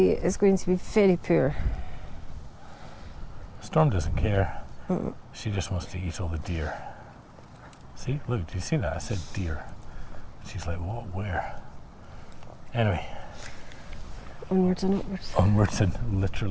is going to be very poor. Storm doesn't care. She just wants to eat all the deer. See, look, do you see that? I said deer. She's like, what, where? Anyway. Onwards and upwards. Onwards and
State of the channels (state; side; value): identical; both; correlation 1.00